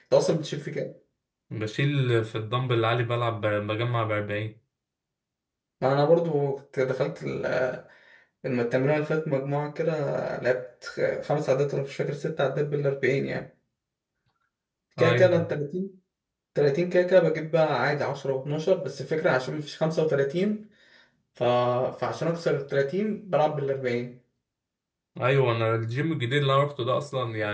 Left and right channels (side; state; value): both; identical; correlation 1.00